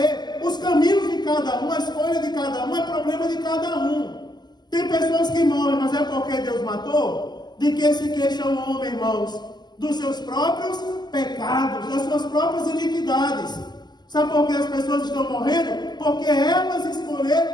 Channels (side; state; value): right; late; 0.21 ms